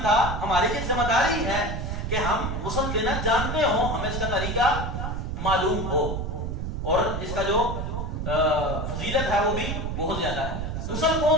تھا، ہماری یہ ذمہ داری ہے کہ ہم غسل دینا جانتے ہوں، ہمیں اس کا طریقہ معلوم ہو اور اس کا جو فضیلت ہے وہ بھی بہت زیادہ ہے. غسل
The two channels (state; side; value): noise; right; rumble, 3 dB below the sound